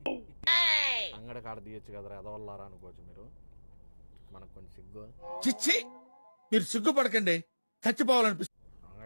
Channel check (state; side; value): inverted; both; correlation -1.00